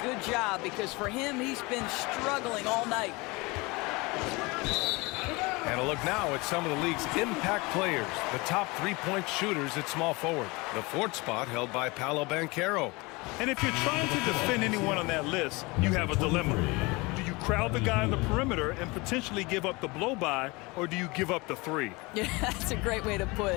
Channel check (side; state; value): right; quieter; 25.0 dB